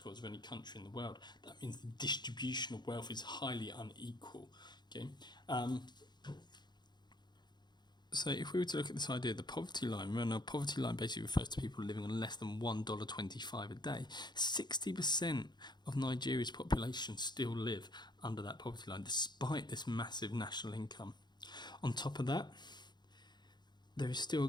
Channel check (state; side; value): late; right; 0.21 ms